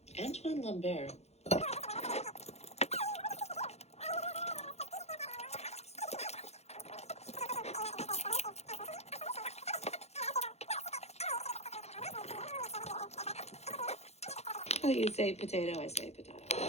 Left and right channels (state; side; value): late; right; 0.31 ms